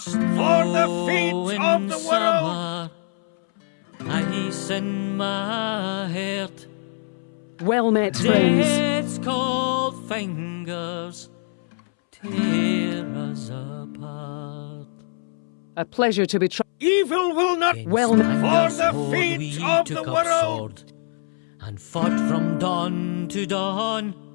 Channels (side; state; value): right; silent; 63 dB below the other